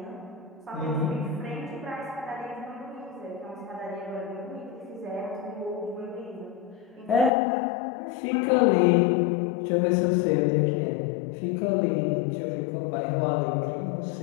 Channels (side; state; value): right; drops out; at 7.3 s